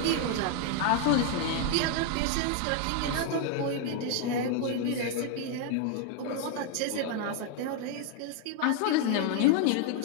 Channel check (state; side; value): different; both; correlation 0.00